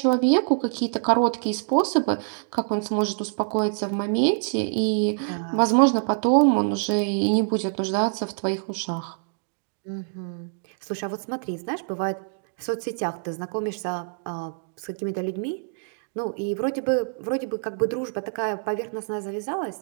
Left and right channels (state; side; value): silent; left; digital silence